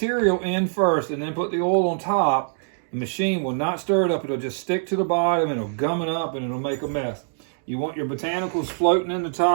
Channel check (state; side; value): silent; left; digital silence